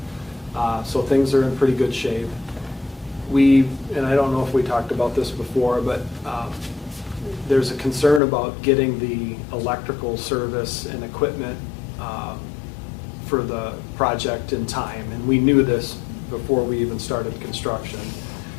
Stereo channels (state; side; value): drops out; right; at 8.2 s